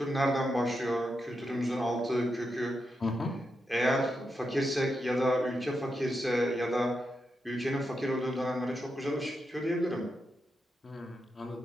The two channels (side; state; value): both; normal; correlation 0.86